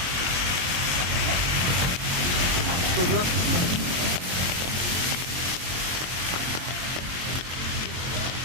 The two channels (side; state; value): left; late; 23 ms